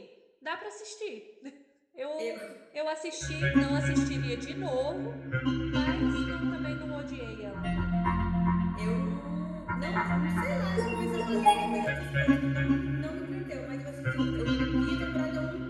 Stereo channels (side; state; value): both; identical; correlation 1.00